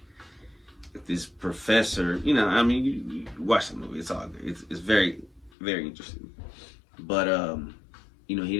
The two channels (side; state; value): right; drops out; at 5.5 s